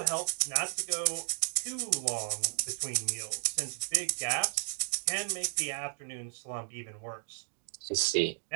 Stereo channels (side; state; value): left; silent; digital silence